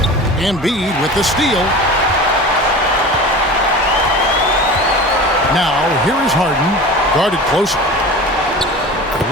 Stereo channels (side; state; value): both; normal; correlation 0.35